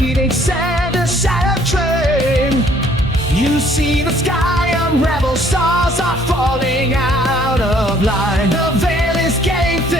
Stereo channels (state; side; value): normal; both; correlation 0.61